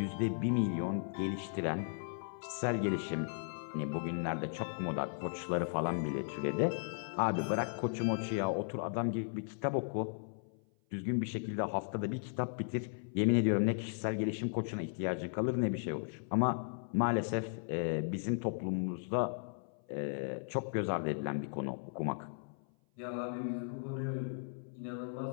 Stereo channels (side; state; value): right; silent; 54 dB below the other